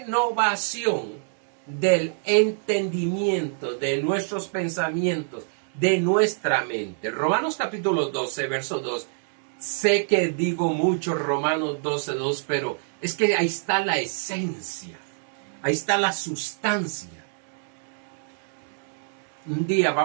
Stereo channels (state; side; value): silent; left; digital silence